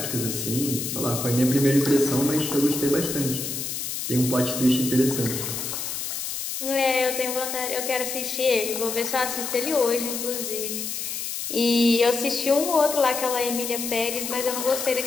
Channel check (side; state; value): left; noise; hiss, 4 dB below the sound